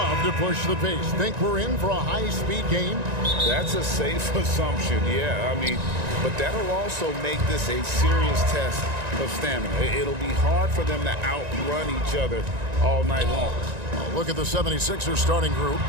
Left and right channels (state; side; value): late; left; 1.9 ms